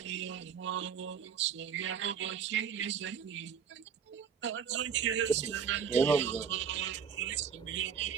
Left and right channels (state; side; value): quieter; left; 7.3 dB